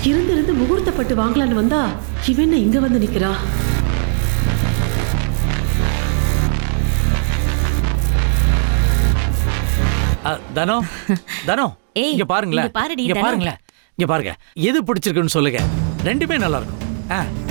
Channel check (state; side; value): silent; left; digital silence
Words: இருந்து முகூர்த்தப்பட்டு வாங்கலான்னு வந்தா இவன் என்ன இங்க வந்து நிக்கிறா? தனோ தனோ இங்க பாருங்களேன், இங்க பாருங்களேன், இங்க பாருங்க. எது பிடிச்சிருக்குன்னு சொல்லுங்க. ரெண்டுமே நல்லா இருக்கும்.